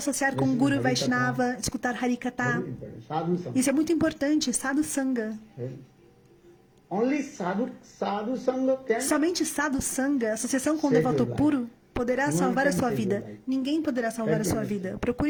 com Guru Vaishnava, escutar Harikatha. Sadhu Sangha. Isso é muito importante, Sadhu Sangha. Only sadhu Sangha can Somente Sadhu Sangha, associação com o devoto puro, poderá salvar a sua vida. Ninguém poderá salvar a sua vida.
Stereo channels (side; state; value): both; identical; correlation 1.00